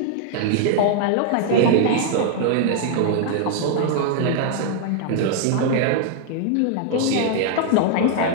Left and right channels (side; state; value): both; different; correlation 0.00